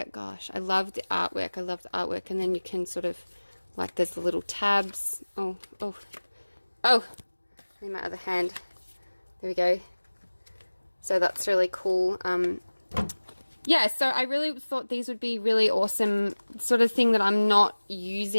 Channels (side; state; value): both; inverted; correlation -1.00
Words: Gosh, I love the artwork. And then you can sort of, like, there's the little tabs. Oh, in my other hand, there we go. So that's really cool. Yeah, so I really thought these would be really awesome, sort of thing that I'm not